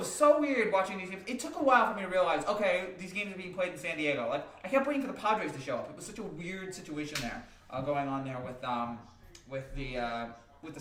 so weird watching these games. It took a while for me to realize, okay, these games are being played in San Diego. Like, I kept waiting for the Padres to show up. It was such a weird situation there going on there with the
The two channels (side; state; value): both; identical; correlation 1.00